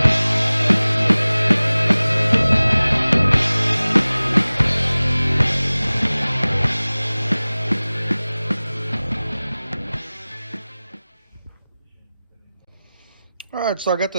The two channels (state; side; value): inverted; both; correlation -0.98